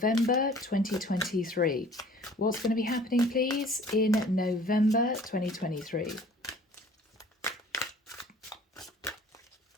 2023. What's going to be happening, please, in November 2023?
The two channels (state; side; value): normal; both; correlation 0.50